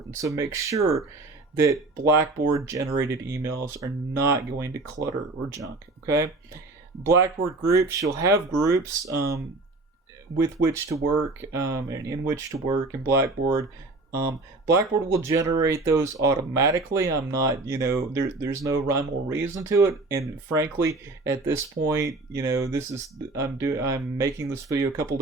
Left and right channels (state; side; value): quieter; left; 3.2 dB